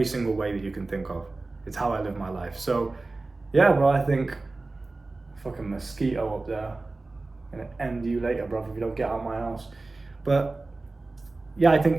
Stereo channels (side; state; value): left; quieter; 3.3 dB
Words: single way that you can think of. It's how I live my life. So yeah, bro, I think fucking mosquito up there. Gonna end you later, bro, if you don't get out of my house. But yeah, I